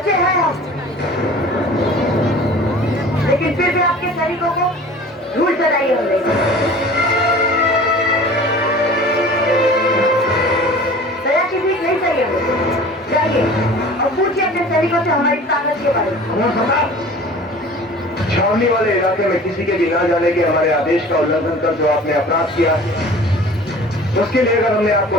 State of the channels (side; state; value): both; normal; correlation 0.43